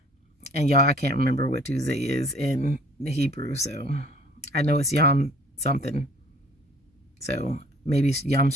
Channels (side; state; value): both; normal; correlation 0.53